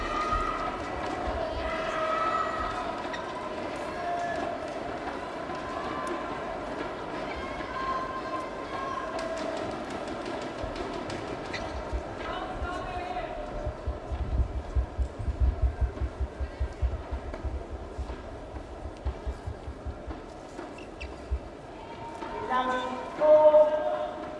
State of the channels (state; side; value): identical; both; correlation 1.00